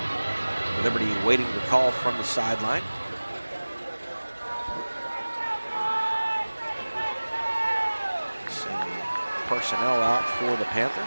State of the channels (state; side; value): inverted; both; correlation -1.00